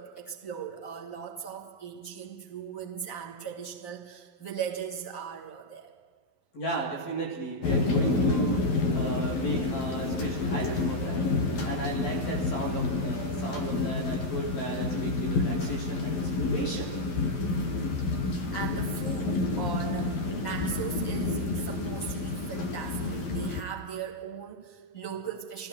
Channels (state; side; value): late; right; 11 ms